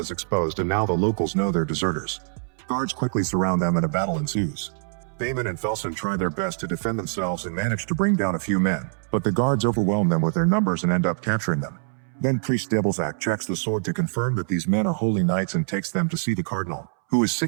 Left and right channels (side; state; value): left; silent; 62 dB below the other